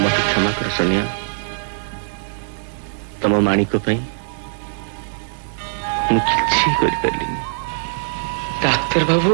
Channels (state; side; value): silent; left; digital silence